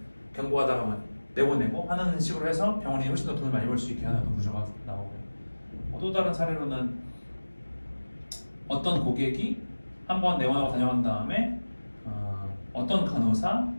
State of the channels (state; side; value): inverted; both; correlation -1.00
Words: 경고하다가만 내보내고 하는 식으로 해서 병원이 훨씬 더 돈을 많이 벌 수 있게 하는 어떤 구조가 나오고요. 또 다른 사례로는 어떤 고객이 한번 내원하고 다녀간 다음에 어떤 간호사,